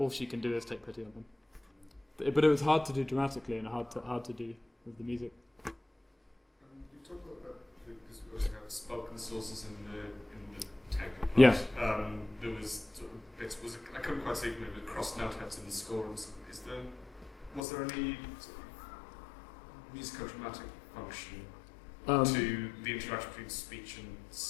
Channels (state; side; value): drops out; right; at 17.6 s